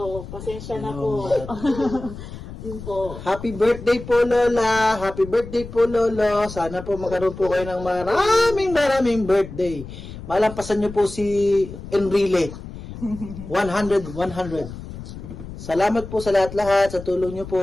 Pasensya na po. Yun po. Happy birthday po, Lola. Happy birthday po, Lolo. Sana po magkaroon po kayo ng maraming birthday. Malampasan niyo po si Enrile. 100. Salamat po sa lahat-lahat, sa tulong niyo po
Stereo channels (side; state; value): left; noise; rumble, 12 dB below the sound